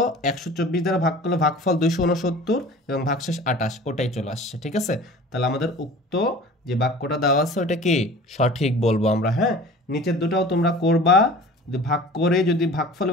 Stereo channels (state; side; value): normal; both; correlation 0.42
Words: 124 দ্বারা ভাগ করলো, ভাগফল 269 এবং ভাগশেষ 28, ওটাই চলে আসছে। ঠিক আছে, তাহলে আমাদের উক্ত যে বাক্যটা দেওয়া আছে ওটা কি সঠিক বলবো আমরা। হ্যাঁ, নিচের দুটাও তোমরা করবা, যদি ভাগ করে যদি ভাগফল